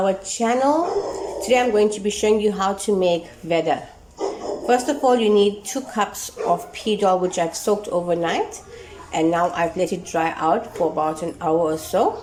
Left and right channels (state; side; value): identical; both; correlation 1.00